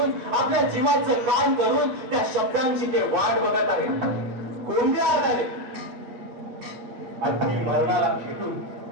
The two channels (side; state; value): left; late; 8.2 ms